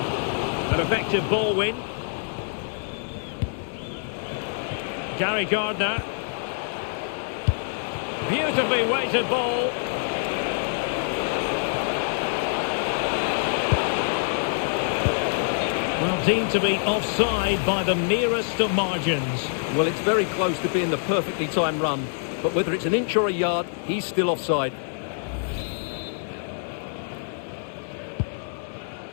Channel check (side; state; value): right; silent; 61 dB below the other